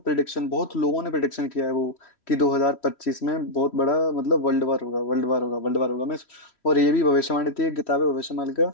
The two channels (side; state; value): right; late; 3.1 ms